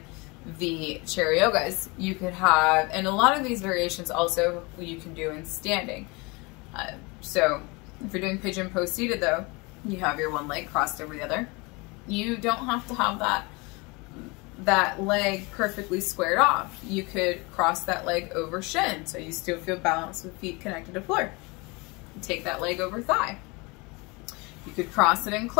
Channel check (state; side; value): quieter; right; 26.9 dB